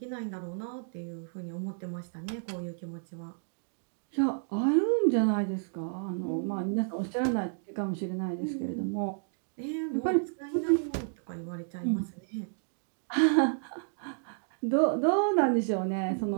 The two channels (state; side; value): silent; left; digital silence